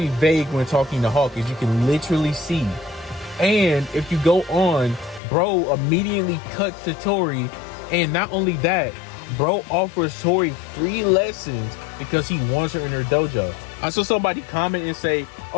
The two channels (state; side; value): drops out; right; at 5.2 s